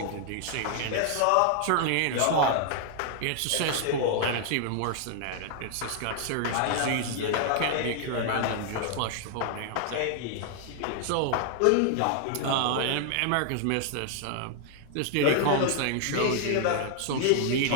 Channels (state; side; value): different; both; correlation 0.00